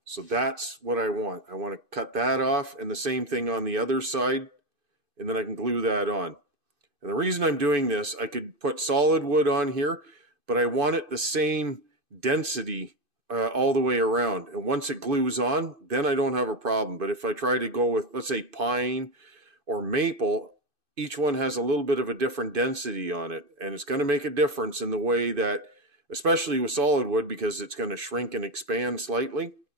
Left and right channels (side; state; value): left; late; 2.5 ms